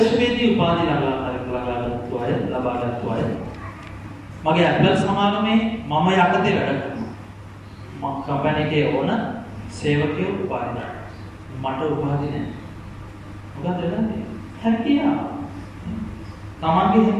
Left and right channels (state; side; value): identical; both; correlation 1.00